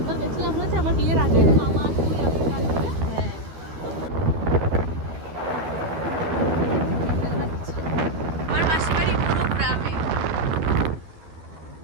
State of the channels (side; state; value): left; late; 12 ms